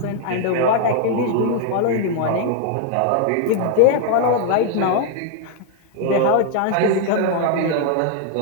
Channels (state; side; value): different; both; correlation 0.00